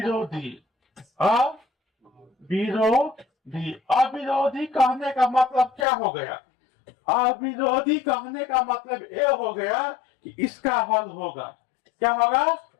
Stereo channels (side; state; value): right; drops out; at 5.9 s